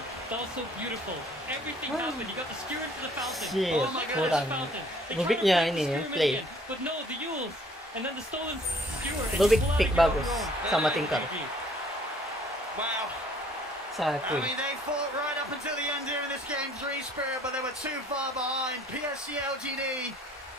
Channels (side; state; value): both; normal; correlation 0.58